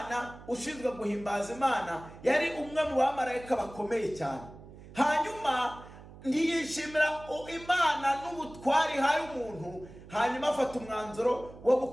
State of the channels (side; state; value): right; noise; hum, 18 dB below the sound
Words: ushinzwe guhimbaza Imana. Yari umwe mu bamarayika bakomeye cyane. Hanyuma ntiyishimira Imana n'ubutwari hari umuntu, hanyuma afata umwanzuro wo